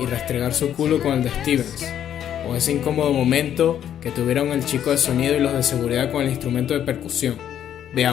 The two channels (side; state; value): right; quieter; 10.1 dB